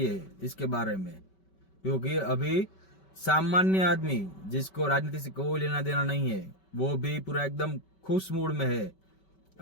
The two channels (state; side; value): late; right; 5.2 ms